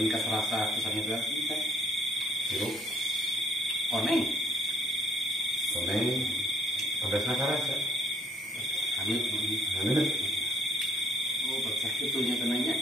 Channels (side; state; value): both; normal; correlation 0.63